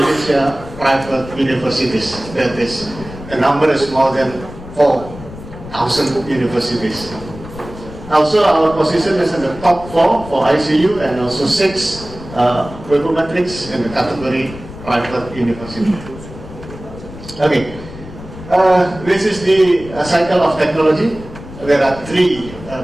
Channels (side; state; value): left; noise; rumble, 14 dB below the sound